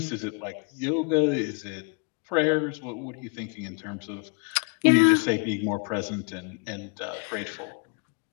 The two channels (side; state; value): right; quieter; 36.8 dB